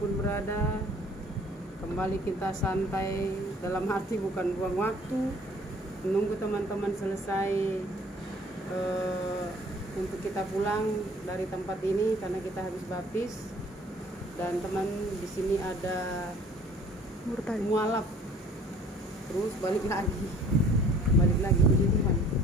berada, kembali kita santai, dalam arti bukan buang waktu, menunggu teman-teman selesai untuk kita pulang dari tempat ini karena kita habis baptis. Dan teman di sini ada mualaf, terus balik lagi puji Tuhan.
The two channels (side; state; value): both; normal; correlation 0.53